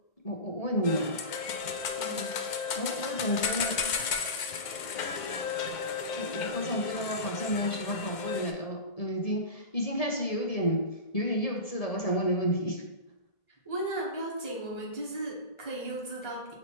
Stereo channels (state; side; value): late; right; 2.1 ms